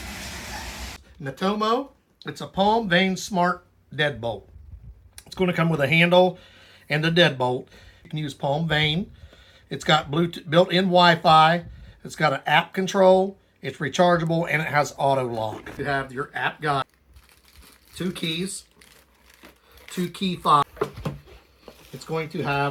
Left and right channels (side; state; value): both; identical; correlation 1.00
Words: NUTOMO, it's a palm vein smart deadbolt. It's going to come with a handle and a deadbolt. You can use palm vein. It's got Bluetooth, built-in Wi-Fi. It's got an app control. It's rechargeable and it has auto lock. You have your app guide, 2 keys, 2 key fobs. It's going to